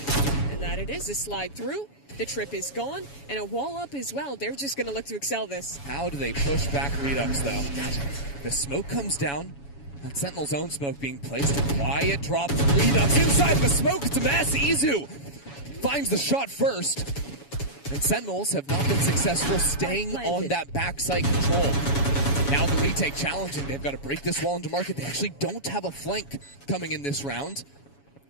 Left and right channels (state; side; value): late; right; 7.1 ms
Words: And that it is a slide through. The trip is gone, and a wall up as well. They're just going to look to excel this. How do they push back Redux, though? The smoke comes down. That Sentinel's own smoke being placed. A quiet drop from Redux inside the smoke. It's a mass. Izu finds the shot first. And Sentinels have not been successful staying on that backside control. Now the retake challenging. They've got to break this wall into market. They actually don't have a flank coming in this round.